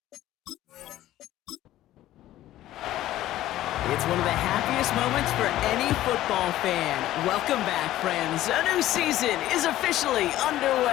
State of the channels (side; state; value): right; quieter; 14.3 dB